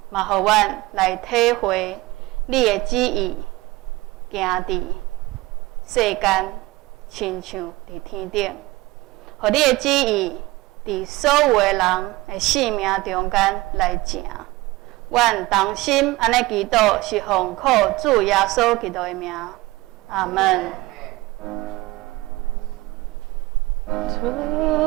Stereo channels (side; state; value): left; quieter; 20.3 dB